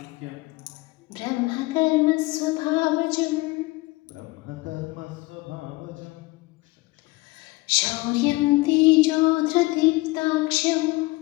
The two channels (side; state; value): right; quieter; 22.0 dB